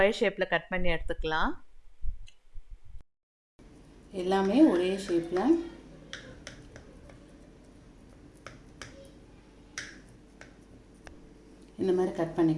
ஷேப்பில் கட் பண்ணி எடுத்துக்கலாம். எல்லாமே ஒரே ஷேப்பில் இந்த மாதிரி கட்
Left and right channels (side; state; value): both; identical; correlation 1.00